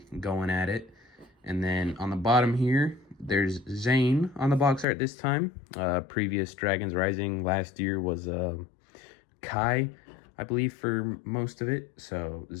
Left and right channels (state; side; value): drops out; right; at 4.9 s